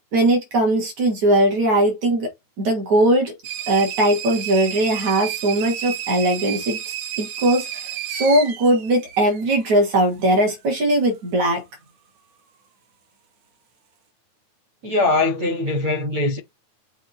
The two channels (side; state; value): left; late; 9.2 ms